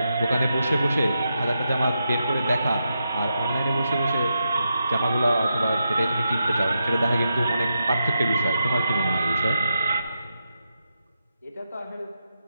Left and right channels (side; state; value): both; inverted; correlation -0.86